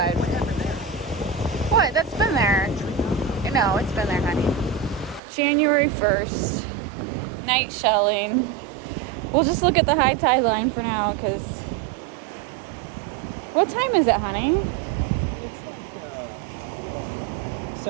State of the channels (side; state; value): left; drops out; at 5.2 s